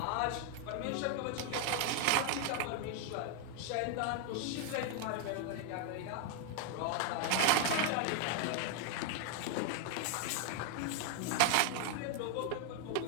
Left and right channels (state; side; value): different; both; correlation 0.00